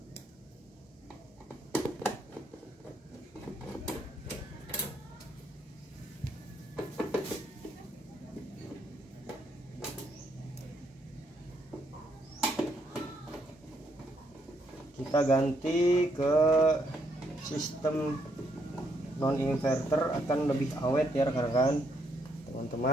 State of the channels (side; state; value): both; normal; correlation 0.74